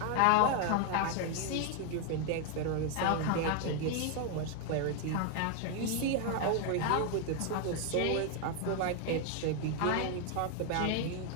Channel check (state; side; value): different; both; correlation 0.00